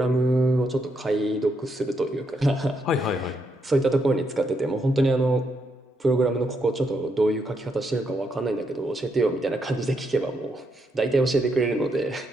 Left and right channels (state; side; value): normal; both; correlation 0.79